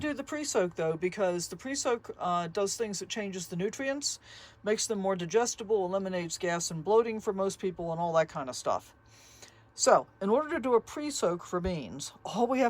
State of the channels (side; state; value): both; identical; correlation 1.00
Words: do the pre-soak though, because the pre-soak does things that changes the nutrients, makes them more digestible, eliminates gas and bloating for most people, and all that kind of stuff. So, in order to do a pre-soak for beans, all we